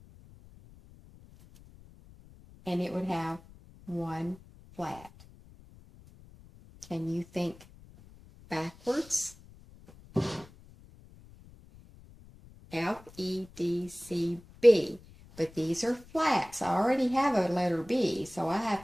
And it would have 1 flat. Can you think backwards? F, E, D, C, B. But these are flats. I already have a letter B, so I have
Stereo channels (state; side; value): noise; left; rumble, 22 dB below the sound